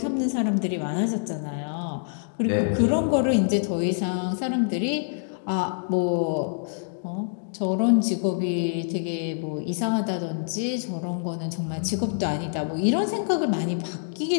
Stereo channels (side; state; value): right; silent; digital silence